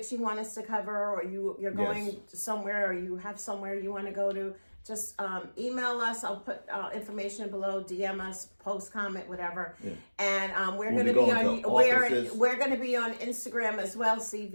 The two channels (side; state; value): both; inverted; correlation -1.00